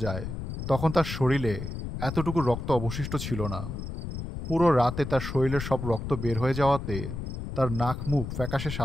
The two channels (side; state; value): left; noise; rumble, 6 dB below the sound